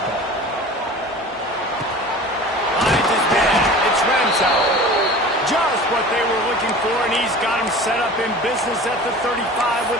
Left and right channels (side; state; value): both; normal; correlation 0.39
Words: ball. Finds his man. It's Ramsauer. Just what they were looking for, and he's got him set up in business at the 35